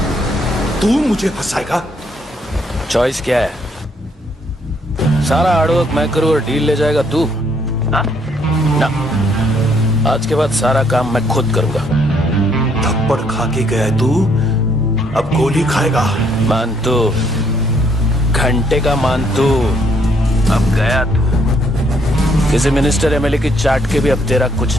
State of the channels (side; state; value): both; normal; correlation 0.69